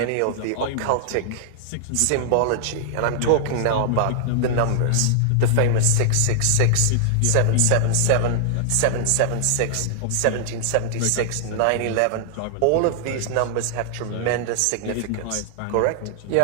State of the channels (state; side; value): different; both; correlation -0.01